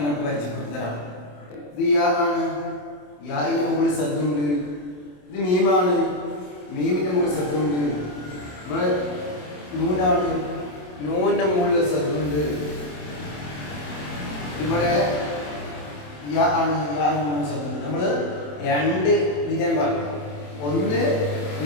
പരിചയപ്പെടുത്തി തരാം. ഇത് യാ ആണ്, യാഇന്റെ മുകളിൽ സദ്ദുണ്ട്. ഇത് മീമാണ്, മീമിന്റെ മുകളിൽ സദ്ദുണ്ട്. ഇവിടെ നൂനാണ്, നൂനിന്റെ മുകളിൽ സദ്ദുണ്ട്. ഇവിടെ യാ ആണ്, യാഇന്റെ മുകളിൽ സദ്ദുണ്ട്. നമ്മൾ രണ്ട് വിജയം പറഞ്ഞു. ഒന്ന്,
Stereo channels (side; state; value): right; late; 27 ms